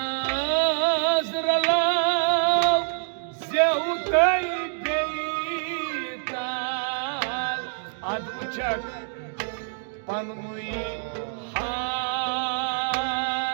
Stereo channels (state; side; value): silent; left; 61 dB below the other